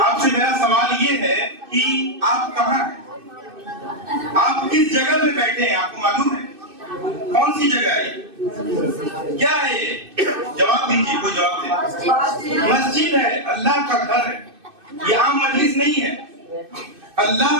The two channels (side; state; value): left; late; 2.6 ms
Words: آپ سے میرا سوال یہ ہے کہ آپ کہاں ہیں؟ آپ کس جگہ پہ بیٹھے ہیں؟ آپ کو معلوم ہے کون سی جگہ ہے؟ کیا ہے یہ؟ جواب دیجیے، کوئی جواب دے. مسجد ہے، اللہ کا گھر ہے. یہ عام مجلس نہیں ہے،